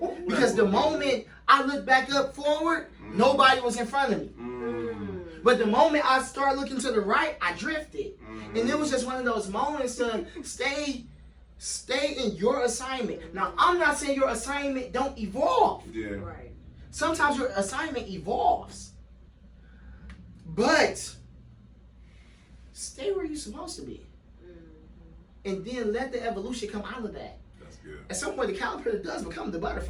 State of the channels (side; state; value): both; identical; correlation 1.00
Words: Because the moment I looked back up forward, nobody was in front of me. But the moment I started looking to the right, I drifted. And it was just one of those moments to stay in your assignment. Now, I'm not saying your assignment don't evolve. Yeah. Right. Sometimes your assignment evolves. But stay where you're supposed to be. And then let the evolution come out of that. That's good. At some point, the caterpillar does become the